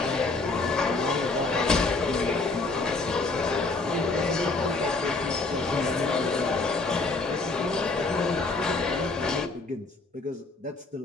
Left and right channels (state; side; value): quieter; right; 3.6 dB